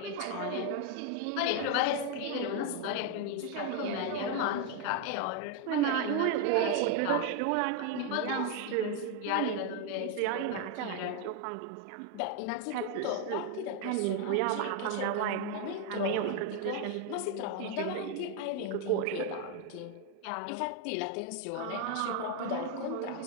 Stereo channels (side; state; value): both; different; correlation 0.01